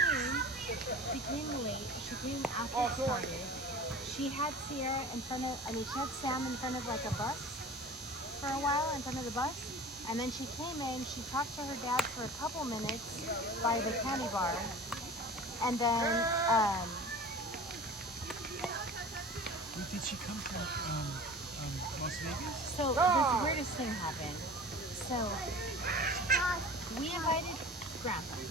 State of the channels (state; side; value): normal; both; correlation 0.39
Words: came late. She came after it started. She had Sierra in front of, she had Sam in front of like a bus for a while, in front of the bus. And then she came in, she talked to her dad for a couple minutes by the candy bar. And then, Wait, did she come from Las Vegas? so this weirdest thing happened. So we invited Grandpa.